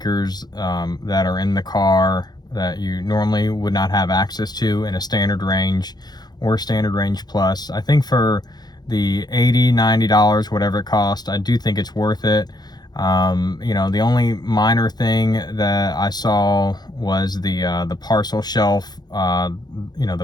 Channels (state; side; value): late; right; 0.20 ms